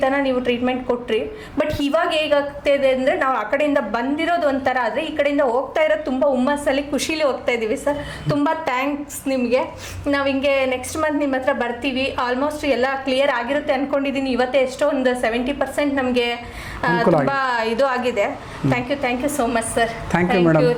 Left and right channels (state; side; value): identical; both; correlation 1.00